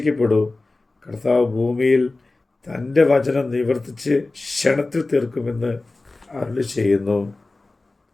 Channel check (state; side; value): quieter; right; 3.2 dB